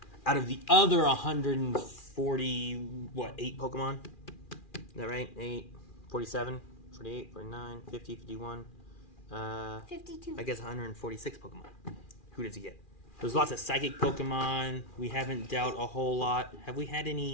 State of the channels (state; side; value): late; right; 2.4 ms